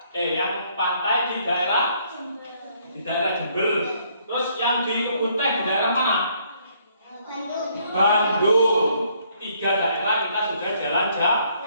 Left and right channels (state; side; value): inverted; both; correlation -0.67